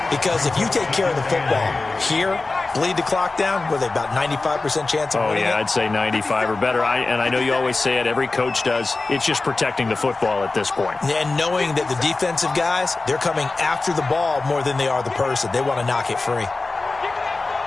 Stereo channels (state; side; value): quieter; right; 3.5 dB